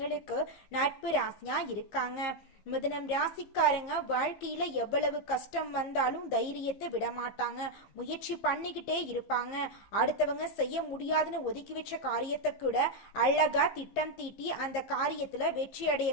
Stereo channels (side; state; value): right; late; 15 ms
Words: நட்பு ராசியா இருக்காங்க. மிதுனம் ராசிக்காரங்க வாழ்க்கையில எவ்வளவு கஷ்டம் வந்தாலும் தைரியத்தை விட மாட்டாங்க. முயற்சி பண்ணிக்கிட்டே இருப்பாங்க. அடுத்தவங்க செய்ய முடியாதுன்னு ஒதுக்கி வச்ச காரியத்தை கூட அழகா திட்டம் தீட்டி அந்த காரியத்துல வெற்றி